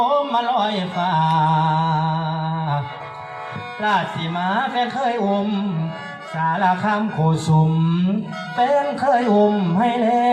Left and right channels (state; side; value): identical; both; correlation 1.00